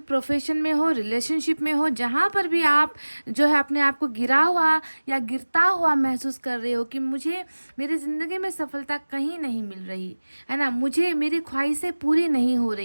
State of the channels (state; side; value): inverted; both; correlation -1.00